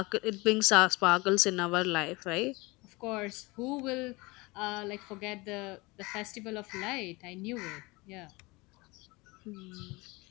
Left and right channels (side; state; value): right; quieter; 24.0 dB